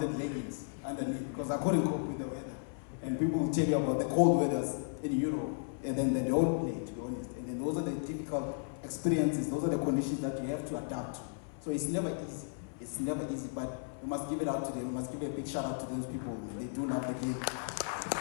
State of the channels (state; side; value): silent; right; 55 dB below the other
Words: leggings underneath because I couldn't cope with the weather. And people will tell you about the cold weathers in Europe, and then they don't play, to be honest. And then those are the difficult experiences, those are the conditions that you have to adapt to. So it's never easy. It's never easy, but we must give it out to them. We must give a big shout out to those people. They do love the game.